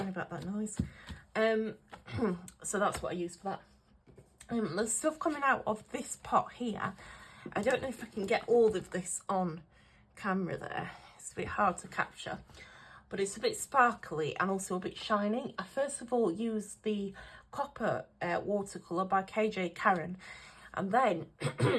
about that noise. So that's what I used for that. The stuff coming out of this pot here, I don't know if I can get all of this on camera there. It's a bit hard to capture, but it's a bit sparkly and also a bit shiny. I first of all used the Copper watercolour by KJ Karen, and then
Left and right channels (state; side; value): identical; both; correlation 1.00